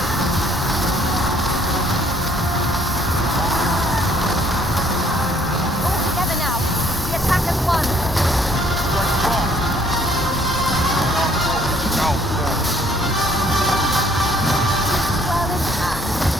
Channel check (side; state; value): both; normal; correlation 0.63